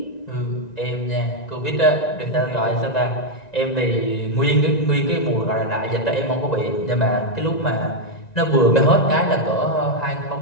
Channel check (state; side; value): late; right; 1.9 ms